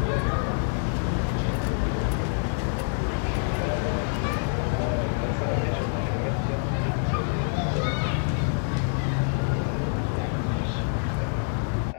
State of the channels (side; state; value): right; silent; 61 dB below the other